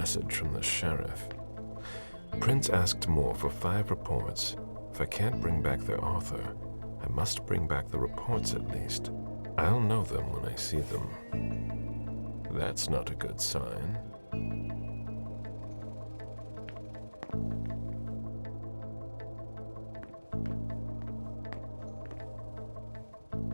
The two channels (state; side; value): inverted; both; correlation -1.00